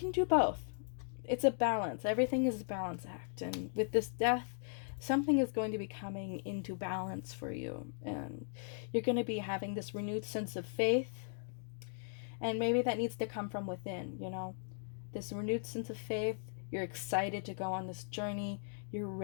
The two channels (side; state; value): right; silent; digital silence